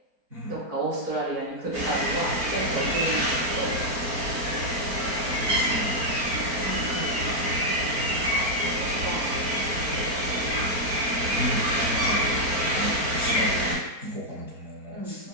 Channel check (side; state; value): left; late; 4.4 ms